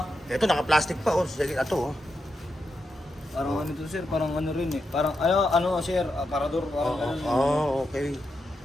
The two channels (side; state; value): both; normal; correlation 0.85